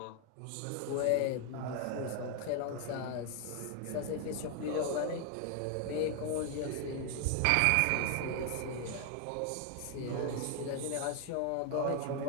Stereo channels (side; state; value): both; different; correlation 0.00